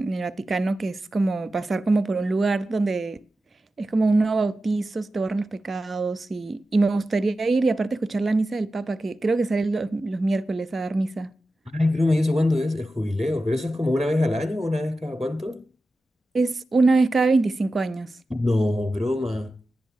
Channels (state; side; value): normal; both; correlation 0.93